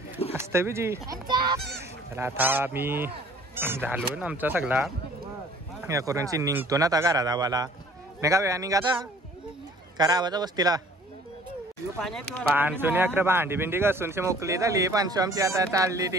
हसत बिजी. चला आता मी झालो ना आमचा सगळा या करून निघतो ना आता घरात आवाला नाही का वेळा निघाता करा आवाजा वस्तीला पानसून अकरा भांडी बिंडी घासून मोकली झाली. पानसू आमची आता चालली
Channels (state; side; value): normal; both; correlation 0.53